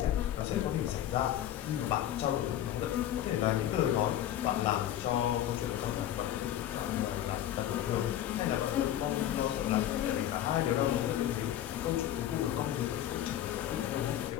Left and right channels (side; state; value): right; quieter; 11.9 dB